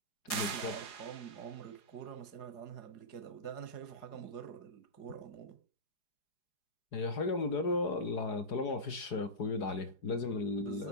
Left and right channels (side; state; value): right; late; 4.8 ms